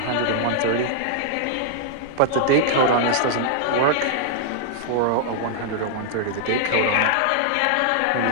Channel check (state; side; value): different; both; correlation -0.01